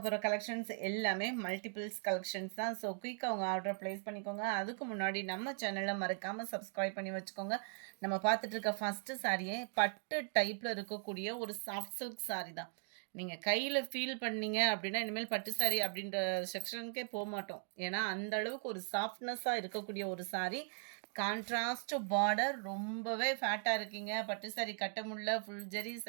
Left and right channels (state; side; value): silent; left; 52 dB below the other